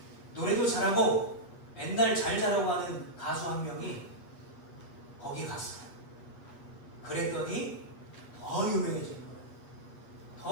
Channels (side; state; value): right; late; 8.3 ms